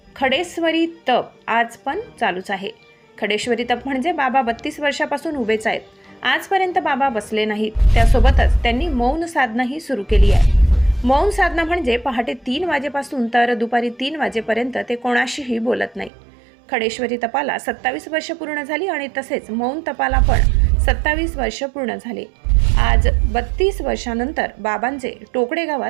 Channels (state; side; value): drops out; left; at 16.1 s